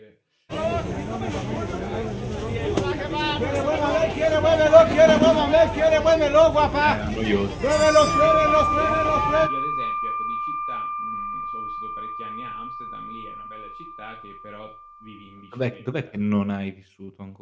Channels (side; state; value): both; identical; correlation 1.00